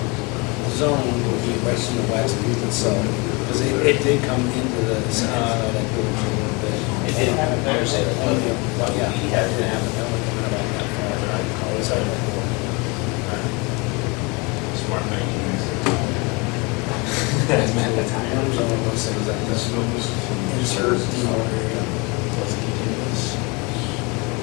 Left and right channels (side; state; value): right; quieter; 28.3 dB